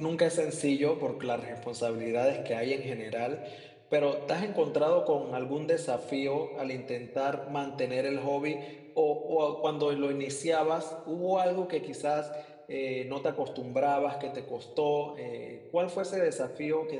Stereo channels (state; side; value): identical; both; correlation 1.00